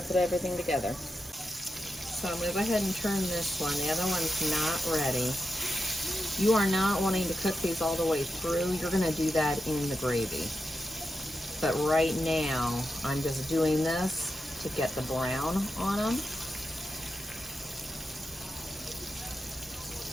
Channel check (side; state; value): both; normal; correlation 0.88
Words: put everything together. So I'm going to go ahead and turn this one. The other one's not ready. You are not wanting to cook these all the way through. You're going to do that in the gravy. But right now, I'm just doing this to get the brown on them.